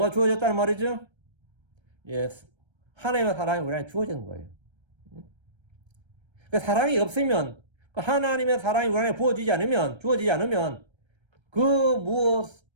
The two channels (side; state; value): left; late; 1.3 ms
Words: 주어졌다는 말이죠? 예, 하나님의 사랑이 우리한테 주어지는 거예요. 그 사랑이 없으면, 그 하나님의 사랑이 우리한테 주어지지 않으면 그